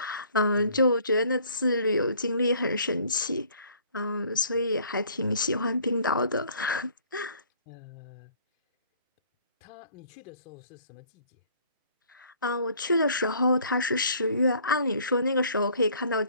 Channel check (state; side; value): inverted; both; correlation -0.56